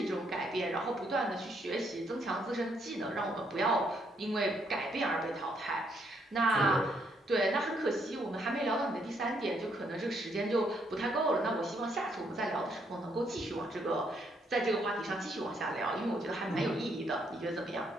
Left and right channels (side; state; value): both; normal; correlation 0.72